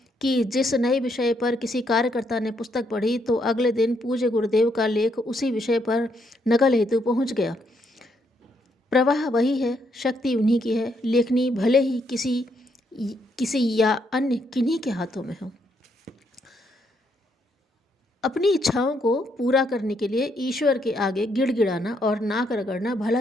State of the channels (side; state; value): both; normal; correlation 0.75